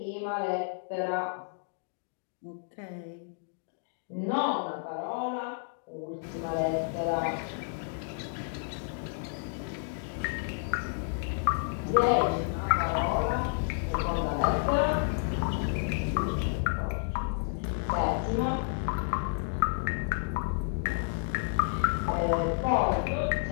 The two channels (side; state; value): right; silent; digital silence